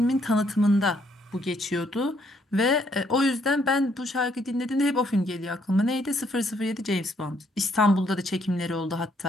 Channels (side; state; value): both; normal; correlation 0.70